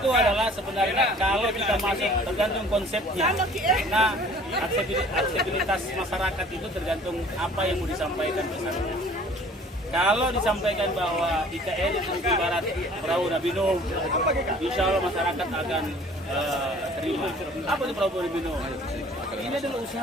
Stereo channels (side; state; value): both; normal; correlation 0.51